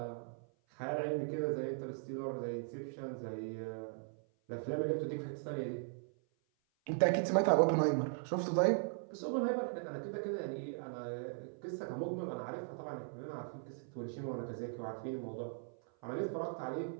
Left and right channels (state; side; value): silent; left; 52 dB below the other